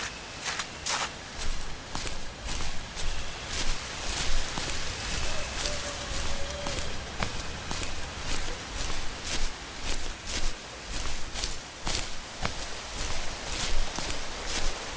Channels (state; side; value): identical; both; correlation 1.00